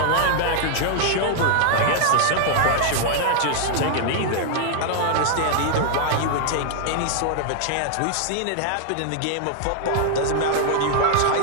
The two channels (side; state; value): both; different; correlation 0.00